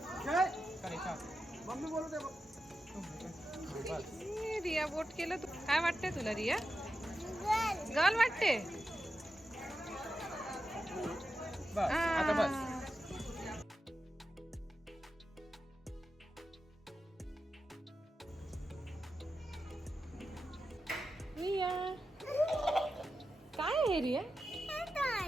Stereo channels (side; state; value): both; normal; correlation 0.90